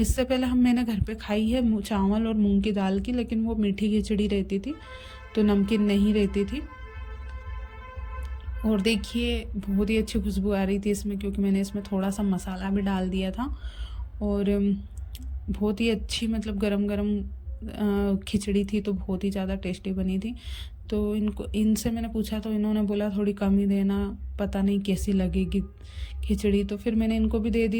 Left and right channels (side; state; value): both; identical; correlation 1.00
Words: पहले मैंने घर पे खाई है चावल और मूंग की दाल की, लेकिन वो मीठी खिचड़ी रहती थी, तो नमकीन नहीं रहती थी। और देखिए बहुत ही अच्छी खुशबू आ रही थी इसमें, क्योंकि मैंने इसमें थोड़ा सा मसाला भी डाल दिया था। और बहुत ही अच्छी मतलब गरम गरम खिचड़ी थी, तो बहुत ही ज़्यादा टेस्टी बनी थी। तो इनसे मैंने पूछा, तो इन्होंने बोला थोड़ी कम ही देना, पता नहीं कैसी लगेगी खिचड़ी। तो फिर मैंने इनको भी दे